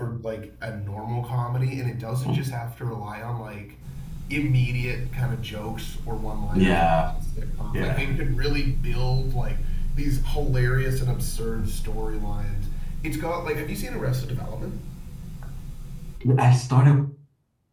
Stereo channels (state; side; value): identical; both; correlation 1.00